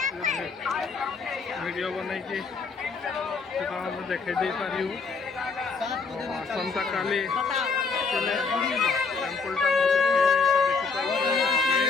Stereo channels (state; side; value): quieter; right; 4.7 dB